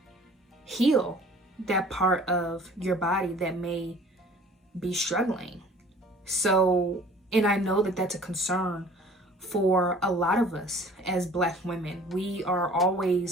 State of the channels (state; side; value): normal; both; correlation 0.50